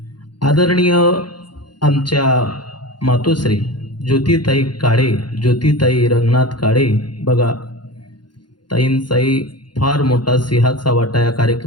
आदरणीय आमच्या मातोश्री ज्योतिताई काळे, ज्योतिताई रंगनाथ काळे, बघा ताईंचाही फार मोठा सिंहाचा वाटा या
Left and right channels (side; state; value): right; late; 0.71 ms